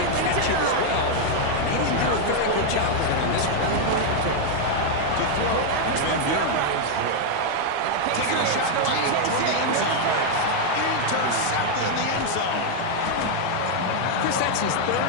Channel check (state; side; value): different; both; correlation 0.00